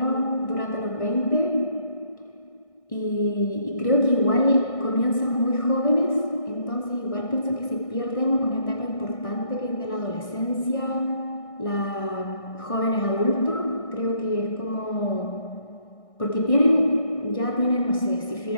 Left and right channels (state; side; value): late; right; 1.6 ms